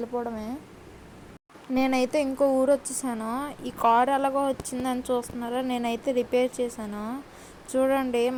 నేనైతే ఇంకో ఊరు వచ్చేసాను. ఈ కార్ ఎలాగో వచ్చిందని చూస్తున్నారా, నేనైతే రిపేర్ చేశాను. చూడండి,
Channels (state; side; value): identical; both; correlation 1.00